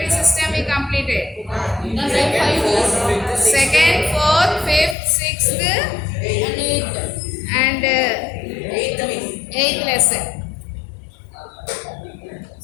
system we completed. Second, fourth, fifth, sixth and eighth lesson.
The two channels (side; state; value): right; drops out; at 5.0 s